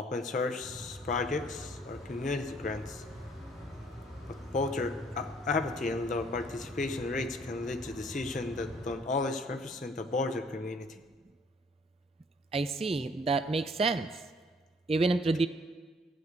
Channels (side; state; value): both; normal; correlation 0.60